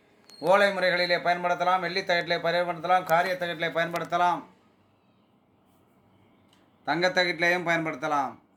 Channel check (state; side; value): identical; both; correlation 1.00